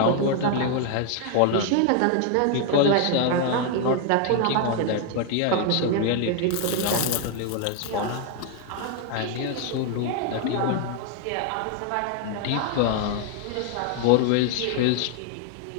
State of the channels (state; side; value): different; both; correlation 0.00